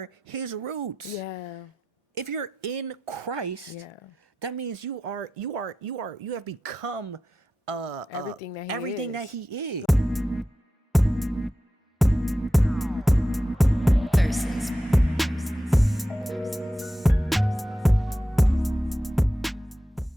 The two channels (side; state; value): both; normal; correlation 0.91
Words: his roots? Yeah. If you're in Christ, that means you have become everything that he is. Versus.